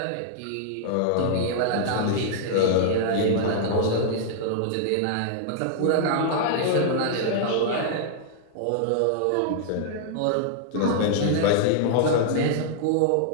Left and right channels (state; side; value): different; both; correlation -0.01